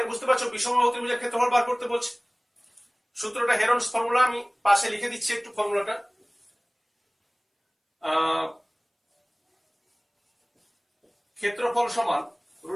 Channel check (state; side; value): identical; both; correlation 1.00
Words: বুঝতে পারছো বিষমবাহু ত্রিভুজের ক্ষেত্রফল বার করতে বলছে। সূত্রটা হেরনস ফর্মুলা, আমি পাশে লিখে দিচ্ছি একটু ফর্মুলাটা। ক্ষেত্রফল সমান